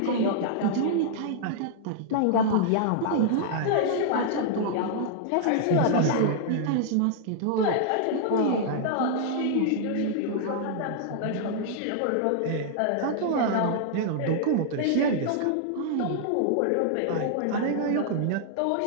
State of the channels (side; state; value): both; different; correlation -0.01